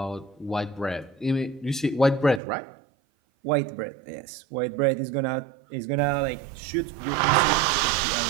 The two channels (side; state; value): left; drops out; at 2.4 s